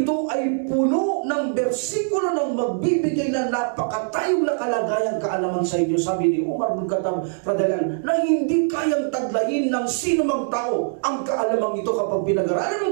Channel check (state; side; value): silent; left; digital silence